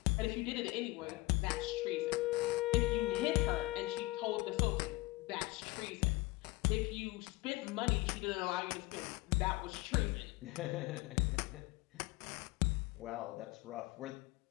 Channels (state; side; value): quieter; right; 21.1 dB